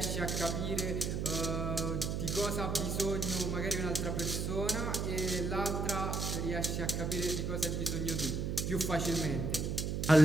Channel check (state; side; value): noise; right; hum, 1 dB below the sound